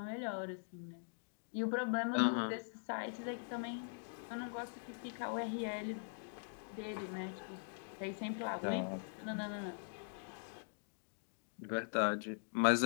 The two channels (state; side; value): silent; right; digital silence